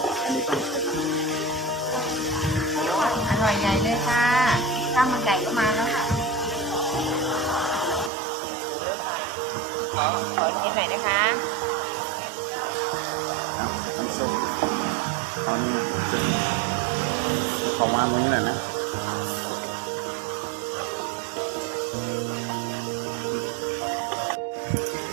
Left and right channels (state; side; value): drops out; left; at 8.1 s